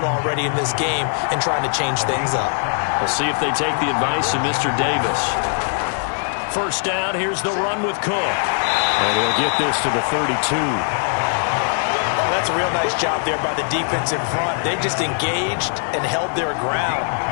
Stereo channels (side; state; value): right; silent; digital silence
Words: already in this game and trying to change things up. We'll see if they take the advice of Mr. Davis. First down, here's the run with Cook. And he'll get this to the 32. Oh, that's a real nice job there by the defense in front. They just engaged and held their ground.